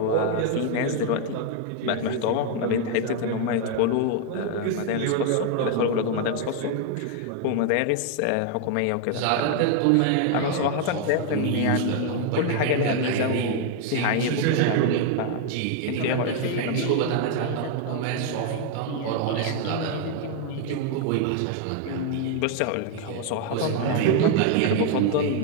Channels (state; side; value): different; both; correlation 0.00